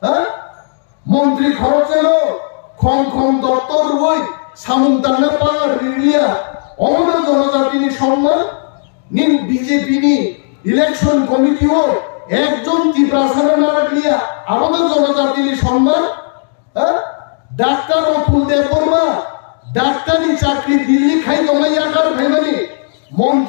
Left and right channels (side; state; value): right; silent; digital silence